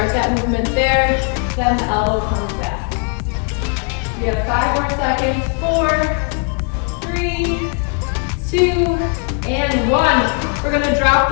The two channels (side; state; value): right; quieter; 39.4 dB